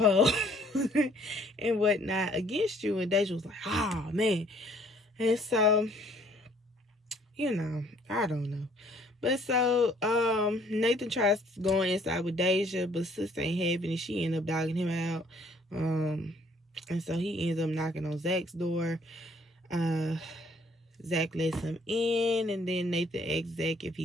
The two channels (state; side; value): normal; both; correlation 0.60